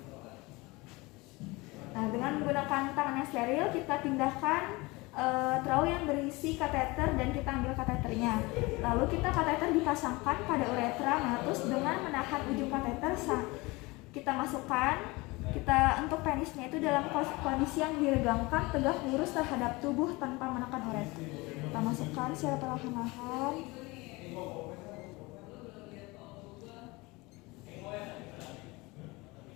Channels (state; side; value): quieter; right; 23.5 dB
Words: Nah, dengan menggunakan tangan yang steril kita pindahkan trau yang berisi kateter dan kita ambil kateternya. Lalu kateter dipasangkan pada uretra meatus dengan menahan ujung kateter. Kita masukkan. Untuk penisnya itu dalam kondisi yang diregangkan, tegak lurus terhadap tubuh tanpa menekan uretra. Kita masukkan secara perlahan-lahan.